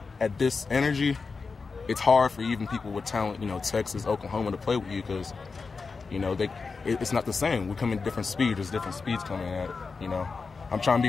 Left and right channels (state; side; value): quieter; right; 4.6 dB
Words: at this energy, it's hard for even people with talent, you know, Texas, Oklahoma, to play with you because, you know, it's not the same. We come in different speeds. There's different speeds coming at it, you know. I'm trying to be